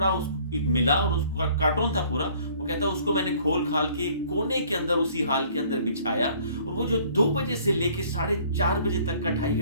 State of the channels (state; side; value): inverted; both; correlation -0.56